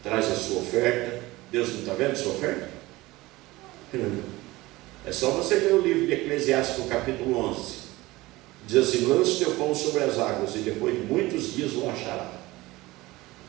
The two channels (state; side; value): quieter; left; 19.7 dB